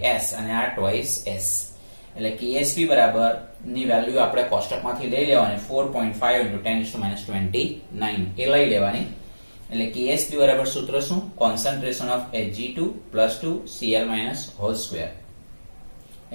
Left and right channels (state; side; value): inverted; both; correlation -1.00